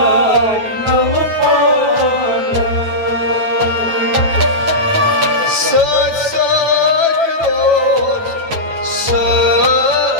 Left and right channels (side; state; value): left; late; 8.9 ms